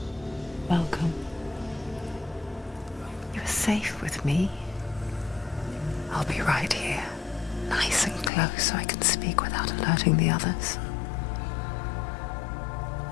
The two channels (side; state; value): right; drops out; at 8.3 s